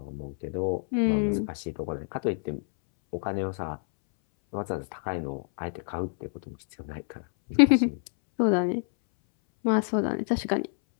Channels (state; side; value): silent; right; 60 dB below the other